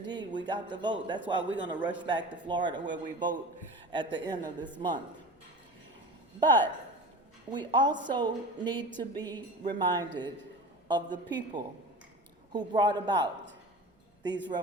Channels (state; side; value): normal; both; correlation 0.34